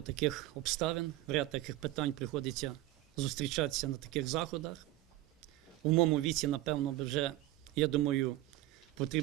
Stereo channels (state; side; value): quieter; left; 16.2 dB